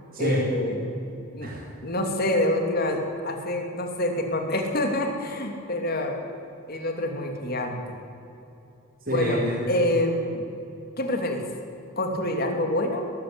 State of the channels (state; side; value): normal; both; correlation 0.10